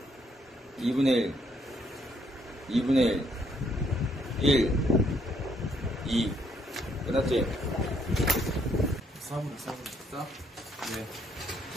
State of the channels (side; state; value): both; normal; correlation 0.70